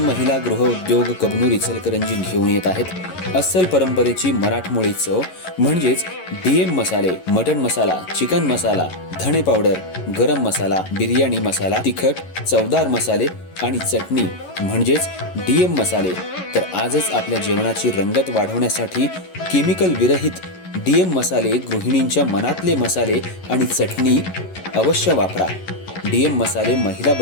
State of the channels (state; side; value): late; right; 11 ms